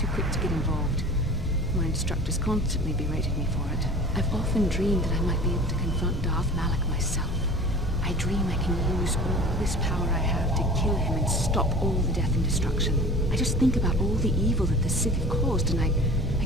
quick to get involved. My instructors constantly berated me for it. I've often dreamed that I might be able to confront Darth Malak myself. I dream I can use all this power I have to kill him and stop all the death and destruction. I just think about all the evil that the Sith have caused and I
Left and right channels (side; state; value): both; normal; correlation 0.39